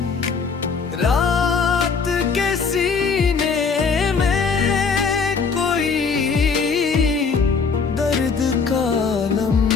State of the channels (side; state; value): right; quieter; 5.3 dB